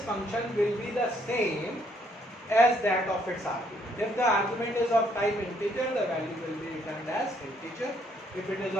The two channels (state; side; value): normal; both; correlation 0.69